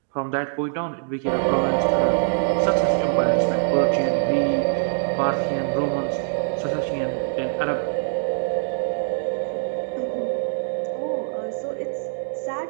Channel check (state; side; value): silent; left; digital silence